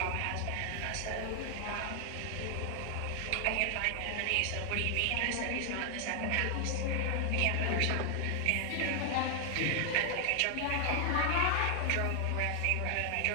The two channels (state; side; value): different; both; correlation 0.00